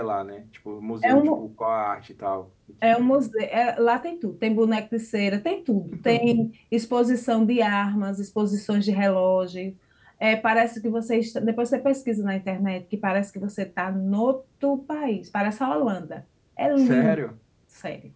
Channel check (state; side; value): identical; both; correlation 1.00